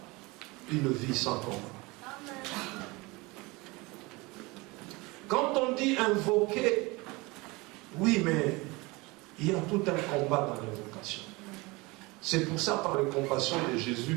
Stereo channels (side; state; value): left; quieter; 24.2 dB